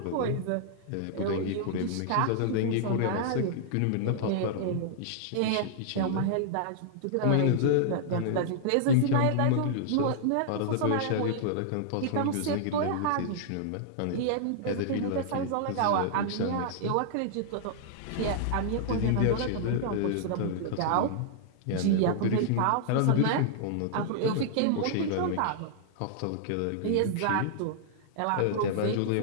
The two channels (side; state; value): both; different; correlation -0.01